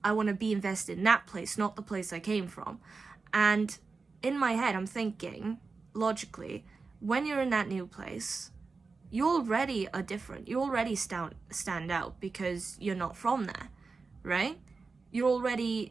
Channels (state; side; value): quieter; left; 4.3 dB